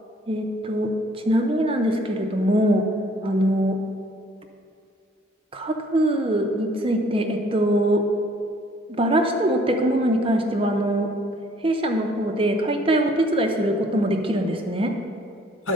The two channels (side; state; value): both; normal; correlation 0.59